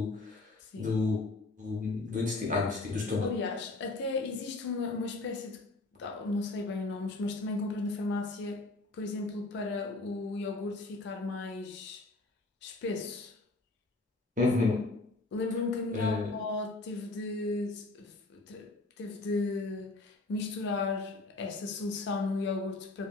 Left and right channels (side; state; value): right; quieter; 3.1 dB